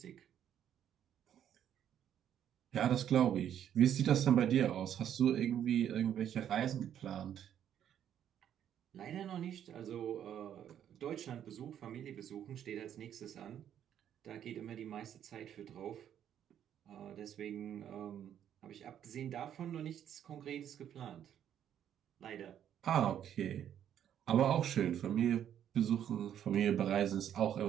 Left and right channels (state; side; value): quieter; left; 9.9 dB